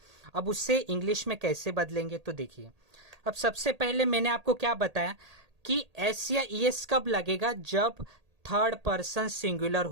अब उससे इंग्लिश में कैसे बदलेंगे? तो देखिए, अब सबसे पहले मैंने आपको क्या बताया कि एस या ईएस कब लगेगा? जब थर्ड पर्सन सिंगुलर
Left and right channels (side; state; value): left; late; 1.8 ms